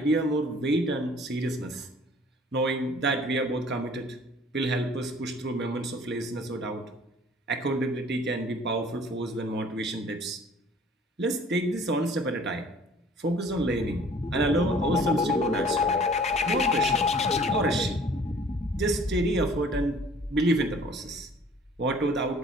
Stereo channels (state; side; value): normal; both; correlation 0.52